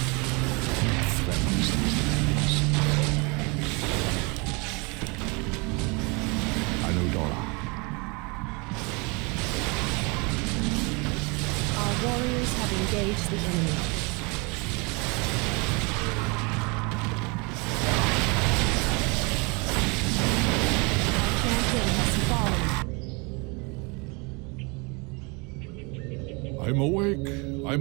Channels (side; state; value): left; quieter; 29.5 dB